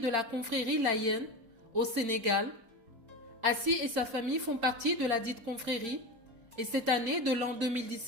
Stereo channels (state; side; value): late; left; 4.4 ms